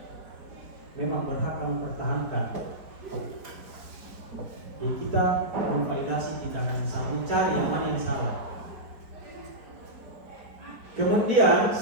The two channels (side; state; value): left; late; 4.6 ms